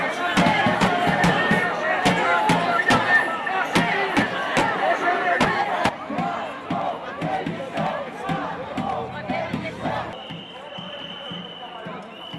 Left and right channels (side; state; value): both; identical; correlation 1.00